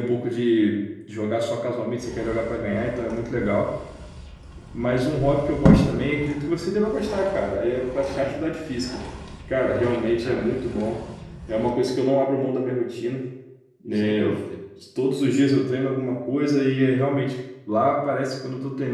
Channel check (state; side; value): identical; both; correlation 1.00